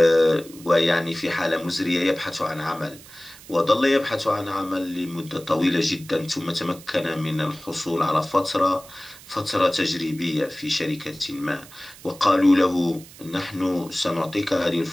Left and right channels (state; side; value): noise; right; hiss, 20 dB below the sound